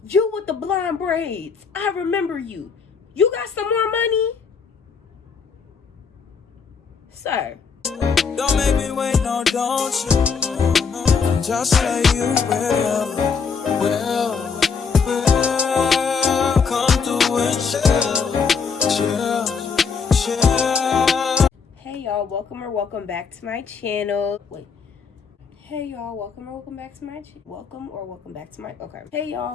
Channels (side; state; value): right; quieter; 5.6 dB